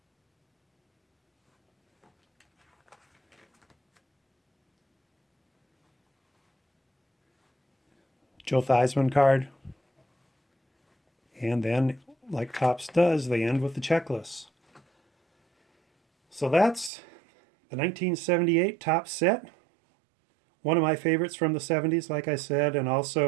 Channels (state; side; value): drops out; left; at 16.9 s